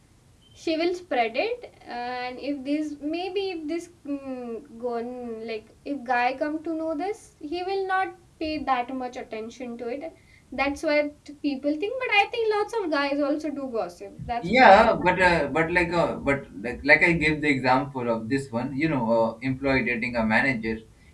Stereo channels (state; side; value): identical; both; correlation 1.00